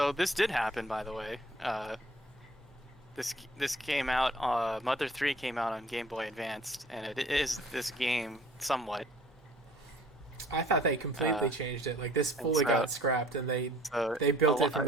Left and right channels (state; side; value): normal; both; correlation 0.53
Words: this did happen, by the way. This came out. Mother 3 came out on Game Boy Advanced, and it is this game somewhat. I thought they completely changed it. Like this fully got scrapped, and they built it from